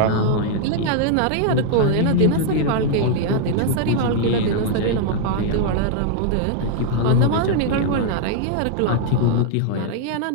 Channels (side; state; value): both; different; correlation 0.00